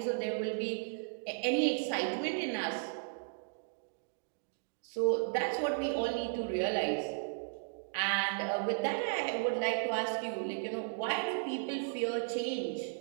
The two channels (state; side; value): silent; left; digital silence